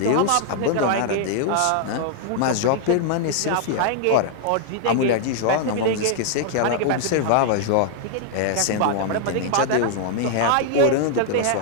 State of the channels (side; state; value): both; different; correlation 0.00